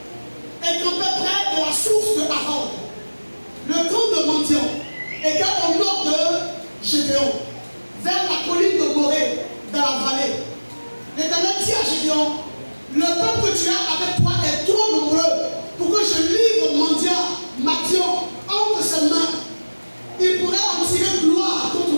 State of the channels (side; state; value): both; inverted; correlation -1.00